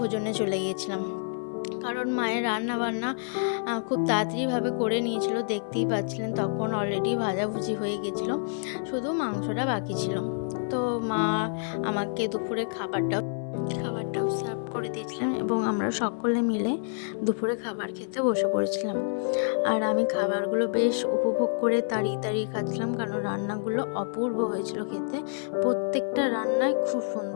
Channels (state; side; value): silent; right; 59 dB below the other